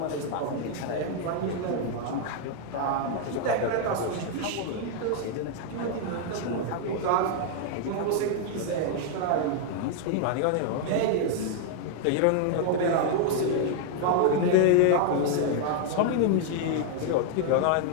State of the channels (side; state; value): both; different; correlation 0.00